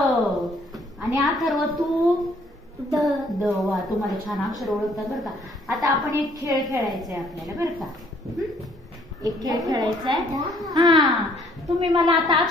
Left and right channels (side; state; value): both; normal; correlation 0.63